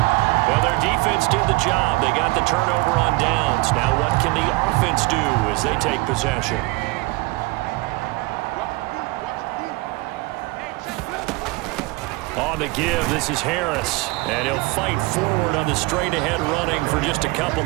well, their defense did the job. They got the turnover on downs. Now what can the offense do as they take possession? On the give, this is Harris. And he'll fight forward on the straight-ahead running for just a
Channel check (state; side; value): quieter; left; 23.4 dB